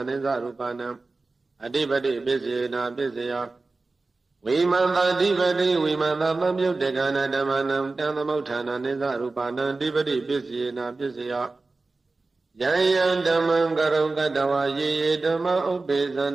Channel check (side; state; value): left; quieter; 3.6 dB